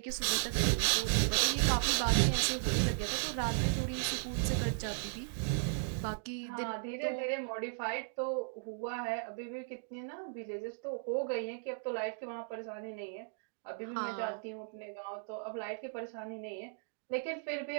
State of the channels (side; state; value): left; silent; digital silence